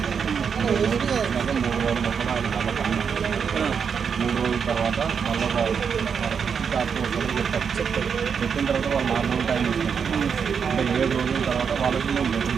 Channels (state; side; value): quieter; left; 6.6 dB